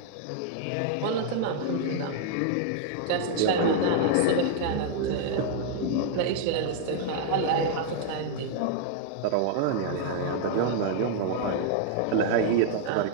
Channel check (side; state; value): both; different; correlation -0.01